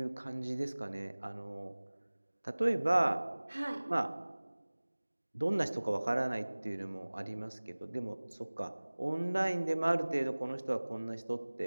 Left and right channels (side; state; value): both; inverted; correlation -1.00